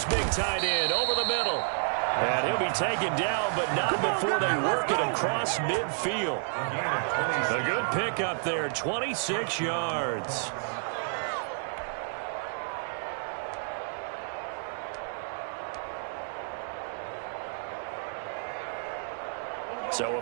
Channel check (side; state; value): left; silent; digital silence